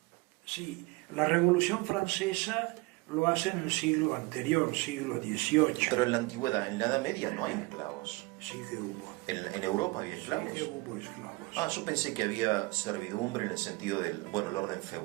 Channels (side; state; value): left; quieter; 23.8 dB